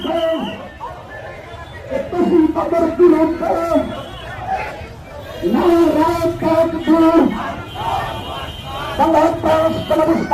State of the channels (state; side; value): identical; both; correlation 1.00